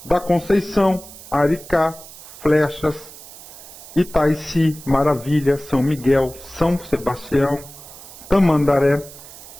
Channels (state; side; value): noise; right; hiss, 17 dB below the sound